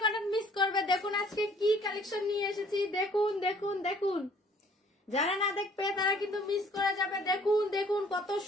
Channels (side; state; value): both; normal; correlation 0.57